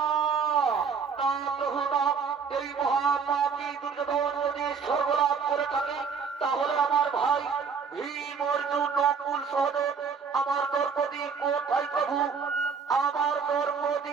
না প্রভু না, এই মহাপাপী দুর্যোধন যদি স্বর্গলাভ করে থাকে, তাহলে আমার ভাই ভীম, অর্জুন, নকুল, সহদেব, আমার দ্রৌপদী কোথায় প্রভু? আমার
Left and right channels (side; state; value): left; quieter; 5.8 dB